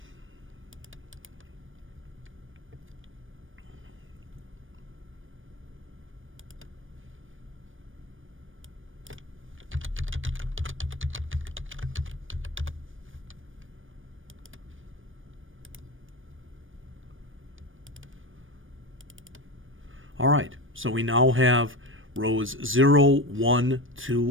All right, so we now have rows 0, 1,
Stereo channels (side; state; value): left; late; 0.58 ms